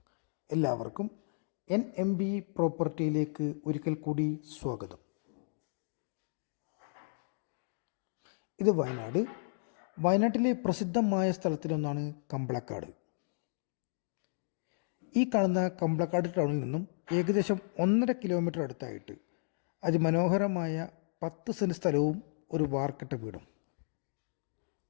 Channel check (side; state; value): right; silent; digital silence